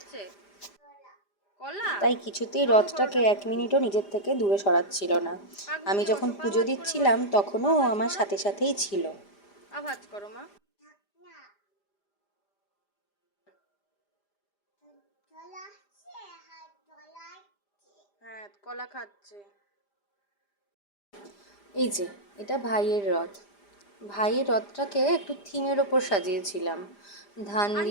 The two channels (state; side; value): late; right; 5.0 ms